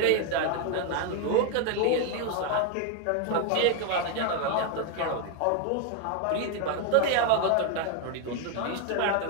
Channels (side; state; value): both; different; correlation 0.01